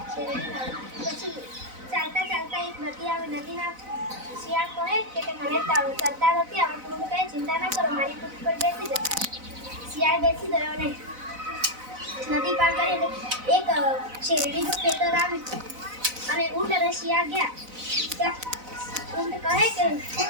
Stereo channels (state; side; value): late; left; 4.0 ms